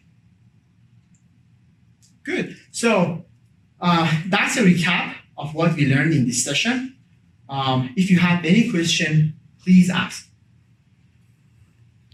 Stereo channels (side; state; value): both; identical; correlation 1.00